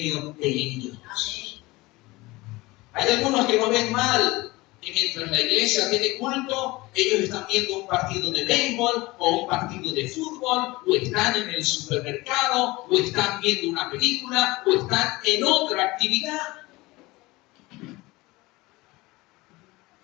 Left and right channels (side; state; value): right; quieter; 21.3 dB